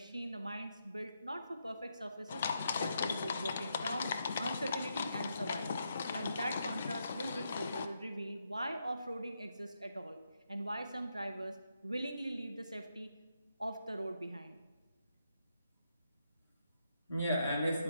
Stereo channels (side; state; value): both; inverted; correlation -0.81